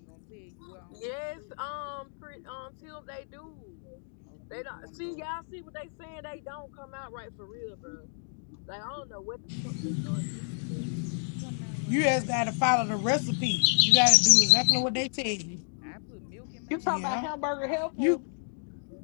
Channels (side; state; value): right; silent; digital silence